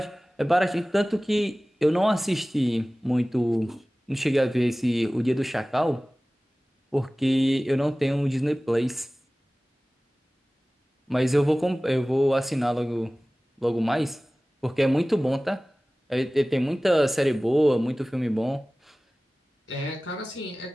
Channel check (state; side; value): normal; both; correlation 0.98